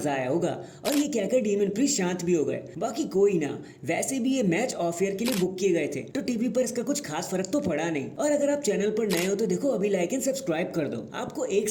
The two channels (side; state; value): both; identical; correlation 1.00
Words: आया होगा और ये कहकर डेमियन प्रीस्ट शांत भी हो गए। बाकी कोई ना, वैसे भी ये मैच ऑफ एयर के लिए बुक किए गए थे तो टीवी पर इसका कुछ खास फर्क तो पड़ा नहीं। और अगर आप चैनल पर नए हो तो देखो अभी लाइक एंड सब्सक्राइब कर दो, आपको 1